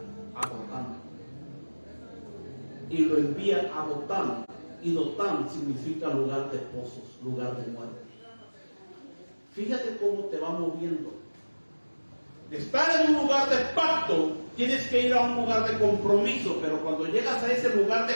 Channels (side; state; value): both; inverted; correlation -1.00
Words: a Dotán. Y lo envía a Dotán. Y Dotán significa lugar de pozos, lugar de muerte. Fíjate cómo te va moviendo. De estar en un lugar de pacto, tienes que ir a un lugar de compromiso, pero cuando llegas a ese lugar